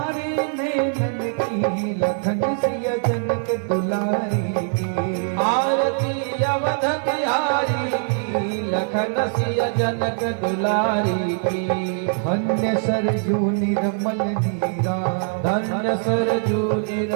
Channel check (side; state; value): left; silent; 58 dB below the other